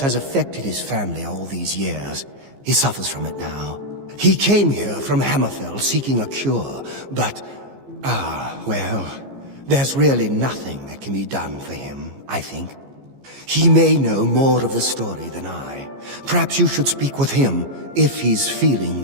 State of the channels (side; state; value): left; late; 15 ms